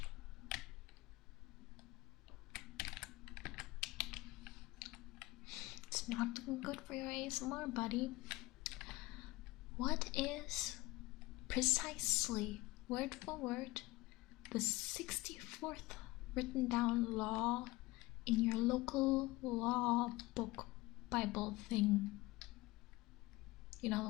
It's not looking good for your ASMR, buddy. What is precisely, word for word, the 64th written down law in your local law book Bible thing? You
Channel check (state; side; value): quieter; right; 20.7 dB